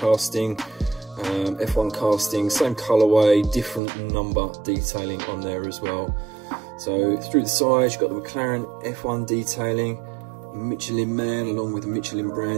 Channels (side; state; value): left; drops out; at 3.8 s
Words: F1 casting, same colourway, different number detailing on there as well. So through the sides, you've got the McLaren F1 detailing, Michelin Man along with the Michelin